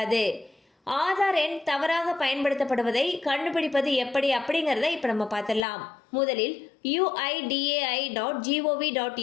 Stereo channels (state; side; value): drops out; right; at 5.7 s